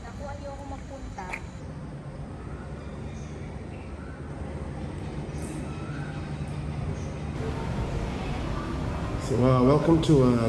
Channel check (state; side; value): identical; both; correlation 1.00